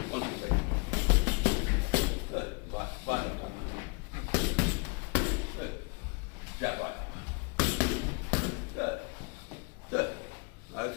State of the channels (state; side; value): quieter; right; 32.6 dB